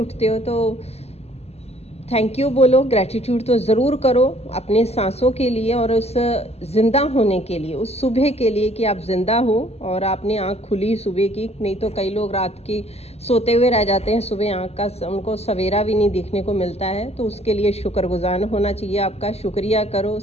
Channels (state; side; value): late; right; 0.30 ms